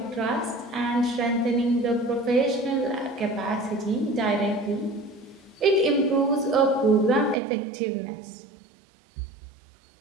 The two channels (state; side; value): drops out; left; at 7.4 s